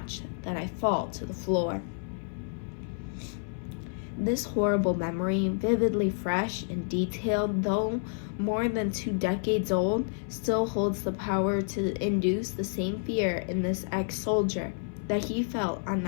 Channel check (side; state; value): right; silent; 58 dB below the other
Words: that I fall to the floor. This horrible memory, vividly fresh and detailed, though more than 2 decades old, still holds the power to induce the same fear in this ex-soldier that he felt on